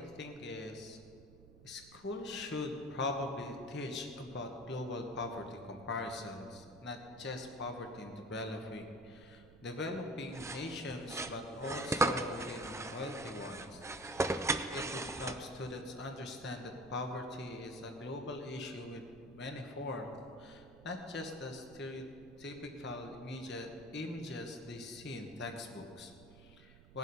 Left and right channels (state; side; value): noise; right; rumble, 19 dB below the sound